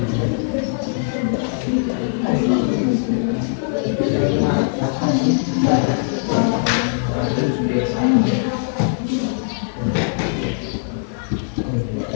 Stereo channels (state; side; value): silent; right; digital silence